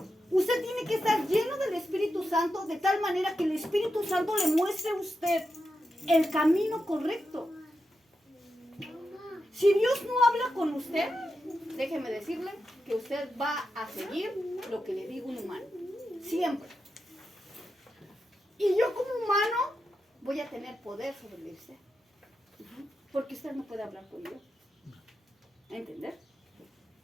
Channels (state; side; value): normal; both; correlation 0.88